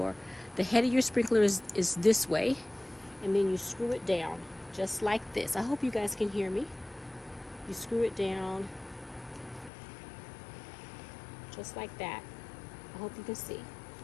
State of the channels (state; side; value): drops out; right; at 9.7 s